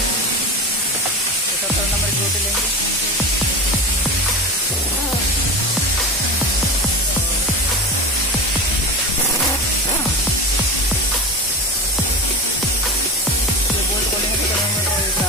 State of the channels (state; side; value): normal; both; correlation 0.25